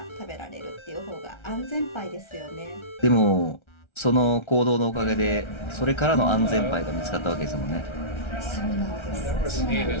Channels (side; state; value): right; late; 1.3 ms